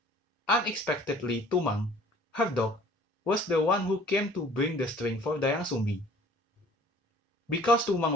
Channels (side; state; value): both; normal; correlation 0.52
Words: Unexpectedly, Tumang, her dog, was the one who came to bring the string for Dayang Sumbi. Because Tumang